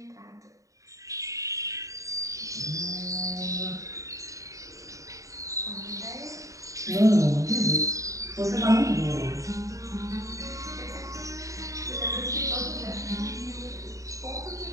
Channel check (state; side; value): late; left; 0.16 ms